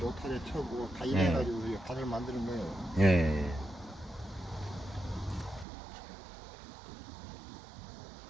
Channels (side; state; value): left; drops out; at 5.7 s